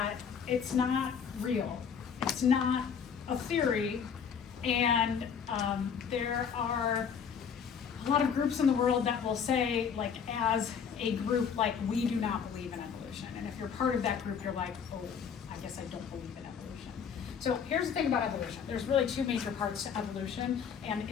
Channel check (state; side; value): quieter; right; 7.0 dB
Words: it's not real. It's not a theory, and there are a lot of groups in the world that will say, like, as a group, like, we do not believe in evolution. And if you're part of that group, you're like, oh, I guess I don't believe in evolution. So here's the thing about evolution. There's really two major parts to evolution, and